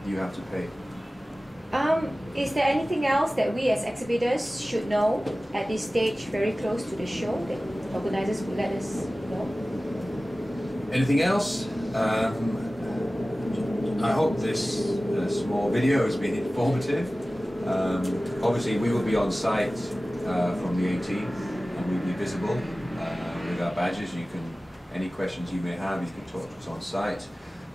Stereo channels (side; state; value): both; normal; correlation 0.96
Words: you have to pay. Is there anything else that we as exhibitors should know at this stage, very close to the show, that organizers would let us know? Anything else? I hope this small video has been informative. Obviously, we will be on site from the 18th, and we'll be visible with our badges. Any questions you may have, you can talk to us on site.